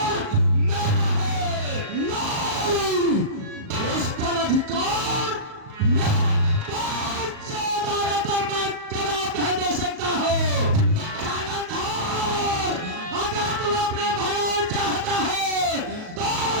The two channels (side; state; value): left; late; 37 ms